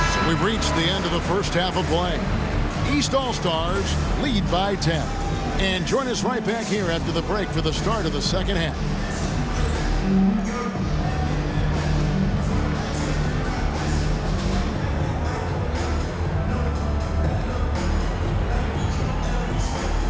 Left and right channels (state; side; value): identical; both; correlation 1.00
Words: So we've reached the end of the first half of play. East All-Stars lead by 10. And join us right back here after the break for the start of the second half.